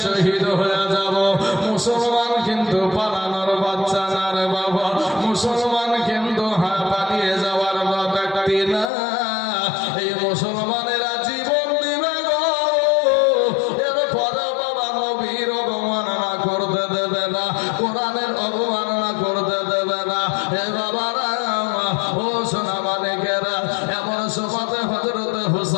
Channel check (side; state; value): right; drops out; at 8.9 s